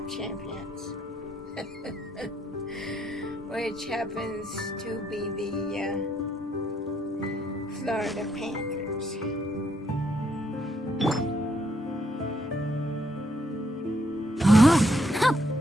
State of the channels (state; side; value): normal; both; correlation 0.73